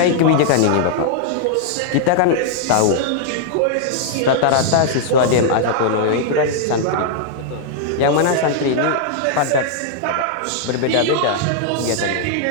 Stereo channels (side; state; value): both; different; correlation -0.01